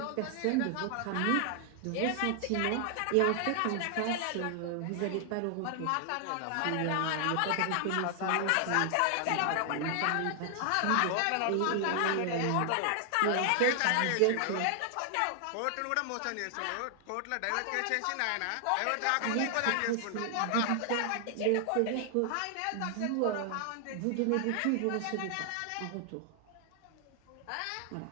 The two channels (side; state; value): both; different; correlation 0.00